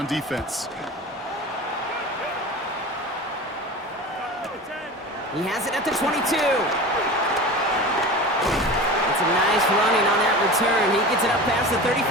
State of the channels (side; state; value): both; normal; correlation 0.32